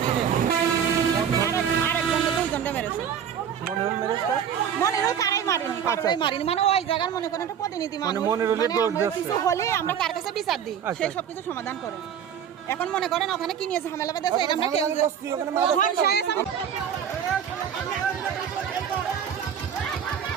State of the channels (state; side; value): quieter; left; 8.4 dB